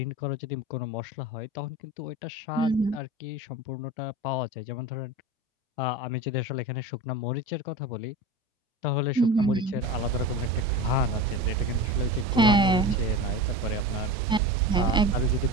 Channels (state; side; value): normal; both; correlation 0.30